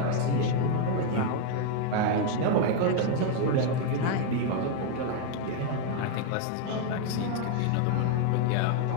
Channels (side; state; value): both; different; correlation 0.00